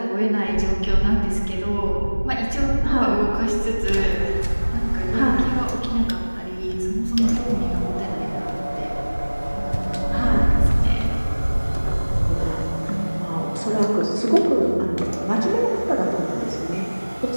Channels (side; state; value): both; inverted; correlation -1.00